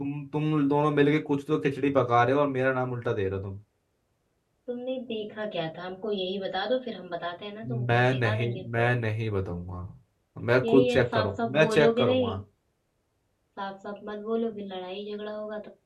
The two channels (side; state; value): both; identical; correlation 1.00